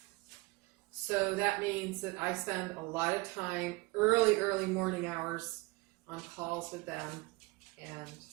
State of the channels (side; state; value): left; quieter; 23.9 dB